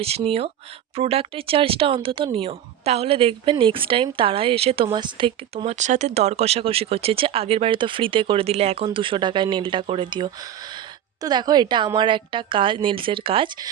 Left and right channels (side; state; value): left; quieter; 10.6 dB